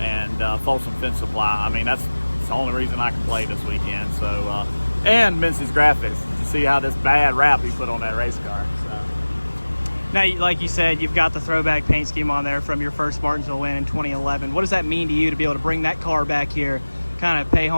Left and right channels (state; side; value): inverted; both; correlation -1.00